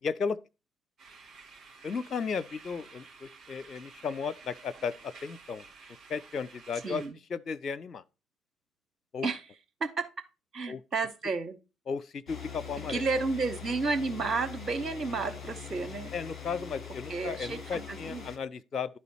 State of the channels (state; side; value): normal; both; correlation 0.69